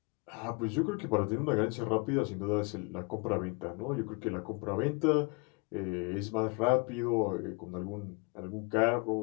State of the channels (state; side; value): quieter; right; 31.2 dB